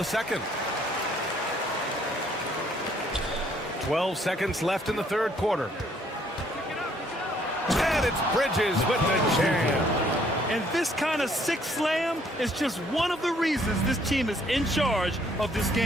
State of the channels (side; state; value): both; normal; correlation 0.65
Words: second. 12 seconds left in the third quarter. And it's Bridges with the jam. And this kind of sick slam is just one of the reasons this team is in charge of this